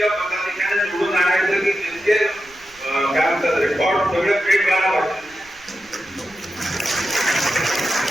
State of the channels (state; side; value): noise; right; rumble, 28 dB below the sound